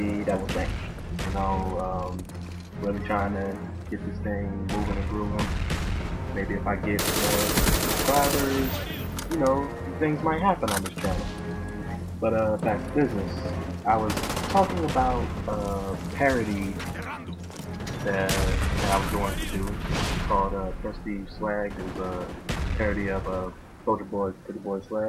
that was thanks. Really trying to get this thing moving and grooving. Maybe if I get more subscribers, things might happen on this channel. But back to business. I was talking about a parody that I was going to do called Prestige Swag. It was a parody of Soldier Boy, Pretty Boy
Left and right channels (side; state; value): both; identical; correlation 1.00